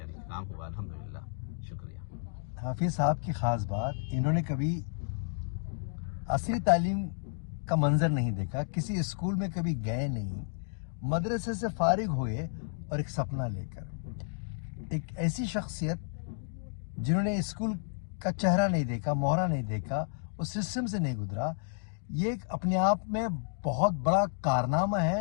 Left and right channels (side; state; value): right; silent; digital silence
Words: काम हुआ, अल्हम्दुलिल्लाह, शुक्रिया। हाफिज साहब की ख़ास बात, इन्होंने कभी असली तालीम का मंजर नहीं देखा, किसी स्कूल में कभी गए नहीं, मदरसे से फारिग हुए और एक सपना लेकर। एक ऐसी शख्सियत जिन्होंने स्कूल का चेहरा नहीं देखा, मोहरा नहीं देखा, उस सिस्टम से नहीं गुजरा, ये अपने आप में बहुत बड़ा कारनामा